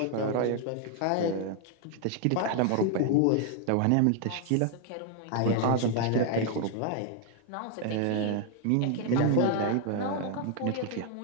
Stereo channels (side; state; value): both; different; correlation 0.01